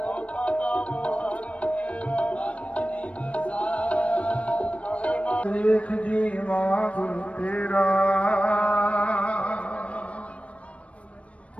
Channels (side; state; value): right; late; 0.063 ms